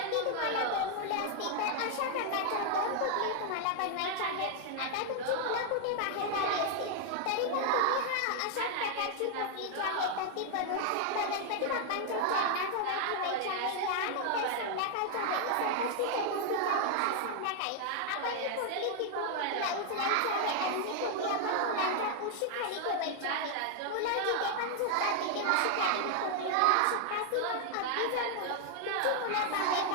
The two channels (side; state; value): both; different; correlation 0.00